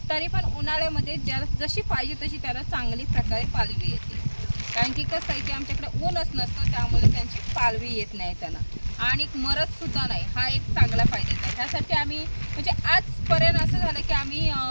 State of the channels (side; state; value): both; inverted; correlation -1.00